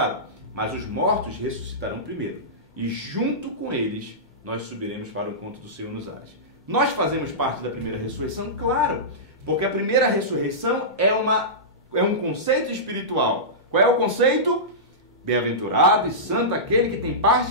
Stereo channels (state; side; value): normal; both; correlation -0.17